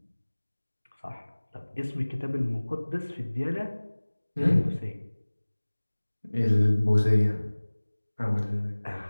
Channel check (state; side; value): inverted; both; correlation -1.00